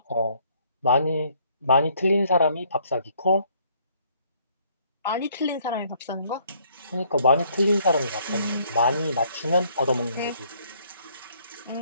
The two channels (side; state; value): both; inverted; correlation -0.65